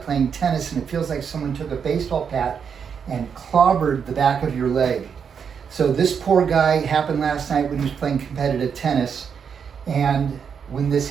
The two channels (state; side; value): quieter; left; 6.9 dB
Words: playing tennis and it feels like someone took a baseball bat and clobbered the back of your leg. So this poor guy happened last night when he was playing competitive tennis. And when this